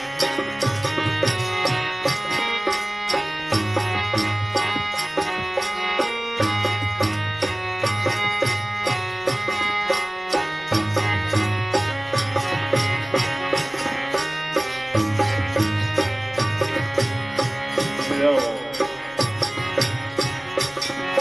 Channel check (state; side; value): noise; left; rumble, 29 dB below the sound